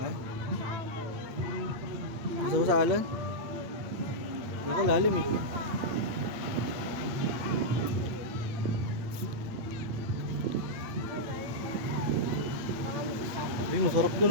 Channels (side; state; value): left; late; 8.7 ms